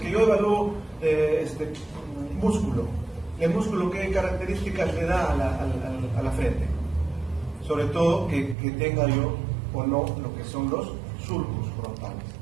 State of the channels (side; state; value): left; drops out; at 8.6 s